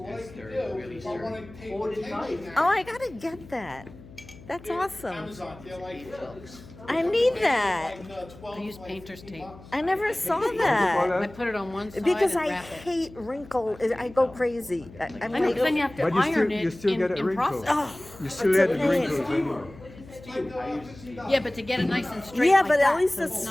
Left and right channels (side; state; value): left; noise; hum, 19 dB below the sound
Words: what I Yes, can they're do, really if I wanna sturdy. take Hold the it tight. tension oh, out. I gotta get that. That's awesome. Amazon, they're like trucks. I need that. Like, 12, I use like painter's 15 tape. bucks. I never saw Call that. I that? put it on one side Because and I wrap it. hate wrinkle, I go crazy. I'm I know, 'cause then like, you have to But you still, iron you it still get a in wrinkle. process. oh, You still it's get a the pain. wrinkles. anyway. Yeah, but to get it nice and straight Yeah, like but at that, least so it's